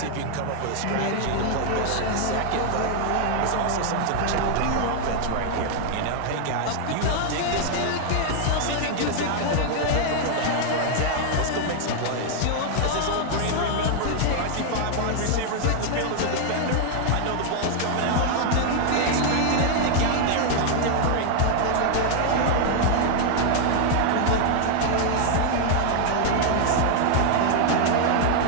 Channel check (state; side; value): different; both; correlation 0.00